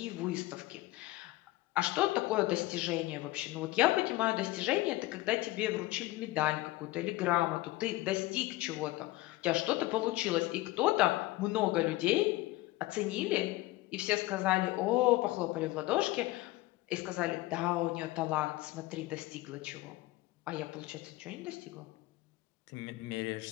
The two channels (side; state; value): right; quieter; 18.6 dB